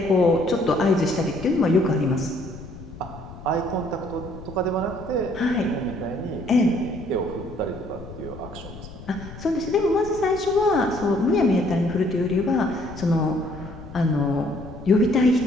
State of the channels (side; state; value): left; noise; rumble, 15 dB below the sound